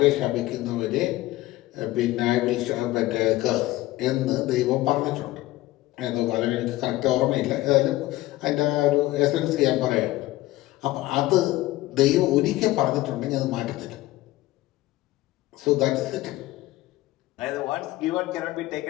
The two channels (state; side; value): quieter; right; 17.3 dB